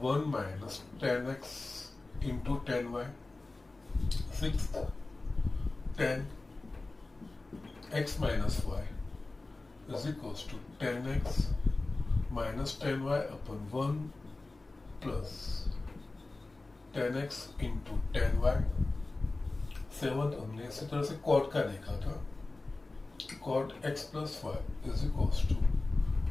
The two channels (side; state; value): right; quieter; 3.2 dB